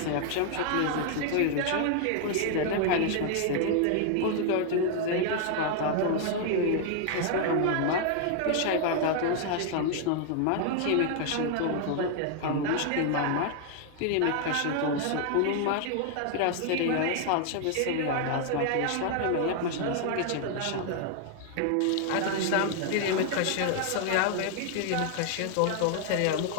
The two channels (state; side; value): different; both; correlation 0.00